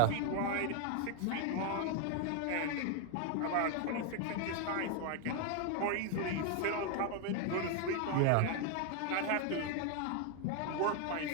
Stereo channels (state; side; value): different; both; correlation 0.01